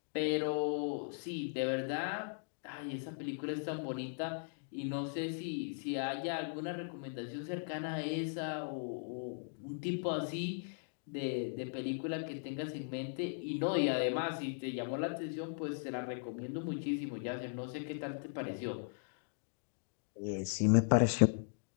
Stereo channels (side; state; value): right; silent; digital silence